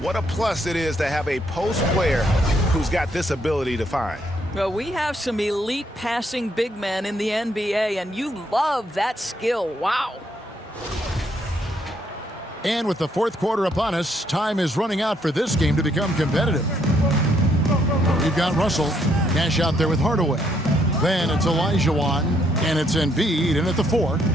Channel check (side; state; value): both; normal; correlation 0.72